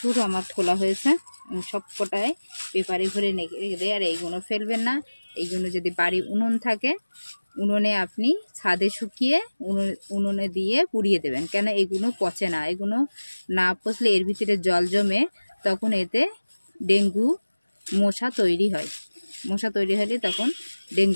আমার খোলা হয়েছে, সব কটায় পেপারে ভরে রেখে দেয়। আর এইগুলো ফেলবেন না, এইগুলো যদি বাড়ি উনুন থাকে উনুনে আপনি ছাদে শুকিয়ে উনুনে দিয়ে পুড়িয়ে দেবেন, কেন এগুলো পচে না। এগুলো না পচলে এর ভিতরে জল জমে, তখন এতে ডেঙ্গু মশা তৈরি হয়। মশা তৈরি হলে তখন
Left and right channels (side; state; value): both; inverted; correlation -1.00